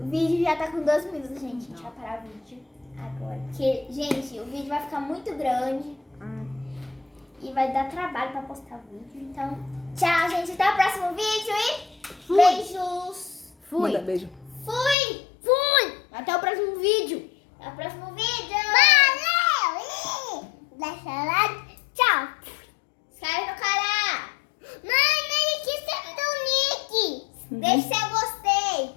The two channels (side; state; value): right; drops out; at 15.0 s